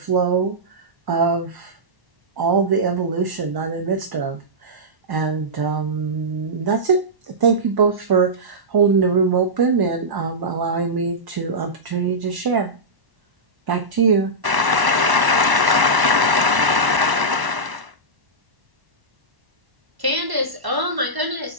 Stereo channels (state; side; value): late; left; 1.1 ms